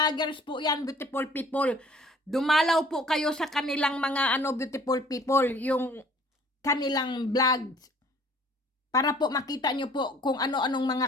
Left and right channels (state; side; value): normal; both; correlation 0.54